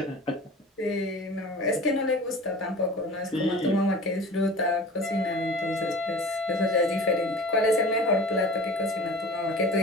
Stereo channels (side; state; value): both; normal; correlation 0.39